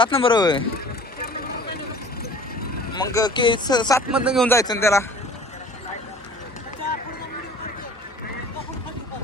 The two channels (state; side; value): normal; both; correlation 0.47